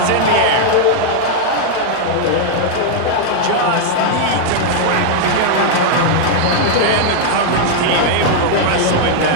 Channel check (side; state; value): both; different; correlation -0.01